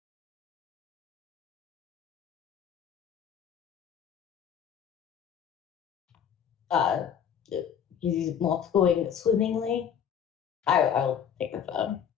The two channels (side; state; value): right; quieter; 8.4 dB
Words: Uh, he's not going swimmingly. I'll take the phone.